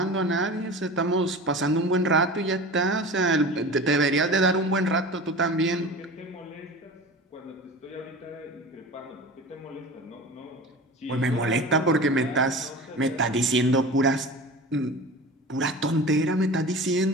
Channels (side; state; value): both; normal; correlation 0.35